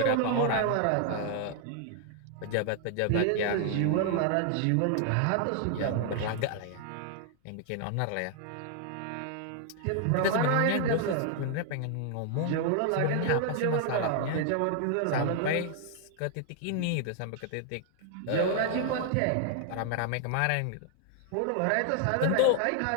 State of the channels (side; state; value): both; different; correlation 0.00